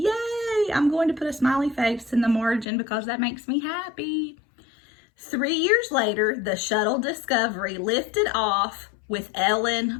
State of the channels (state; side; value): drops out; right; at 2.7 s